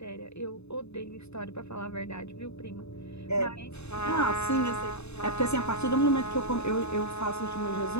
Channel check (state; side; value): late; right; 0.80 ms